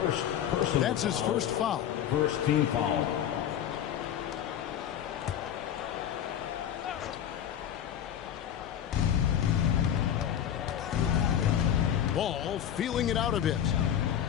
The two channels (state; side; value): quieter; right; 9.9 dB